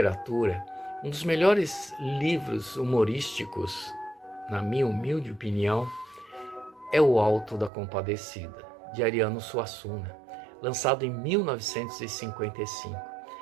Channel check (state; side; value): drops out; left; at 7.7 s